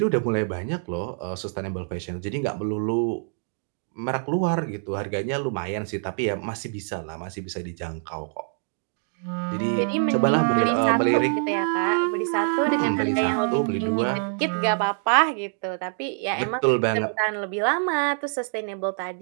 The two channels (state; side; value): silent; left; digital silence